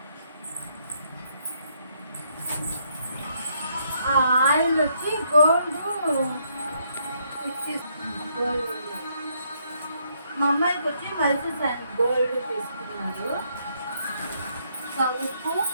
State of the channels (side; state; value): both; inverted; correlation -0.73